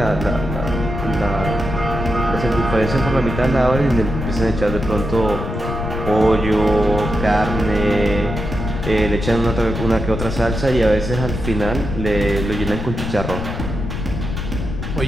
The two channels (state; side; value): noise; left; rumble, 5 dB below the sound